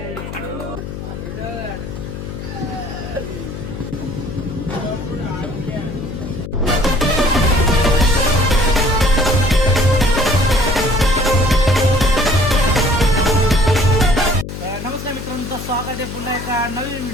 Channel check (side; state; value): left; noise; hum, 9 dB below the sound